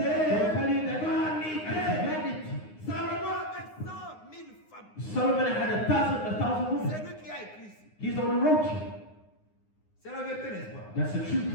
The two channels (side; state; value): right; late; 9.7 ms